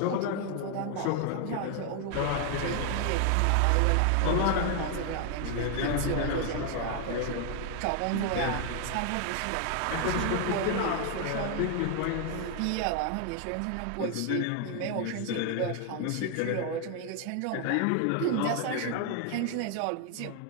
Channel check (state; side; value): different; both; correlation 0.00